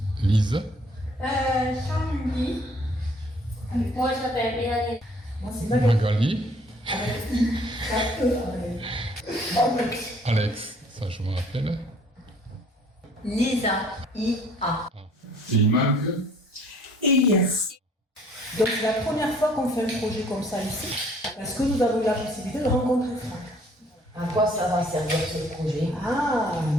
Lise. Jean-Louis. Moi, je m'appelle Mélanie. Moi, c'est Magali. Magali. Alex. Alex, ça je me rappelle. Lisa. I-A. Et il manque. Elias. Donc, c'est la première fois qu'on fait un projet comme ça ici, parce que nous avons eu la possibilité de rencontrer Franck. À quoi ça va servir ce projet? Ah,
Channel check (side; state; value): both; normal; correlation 0.58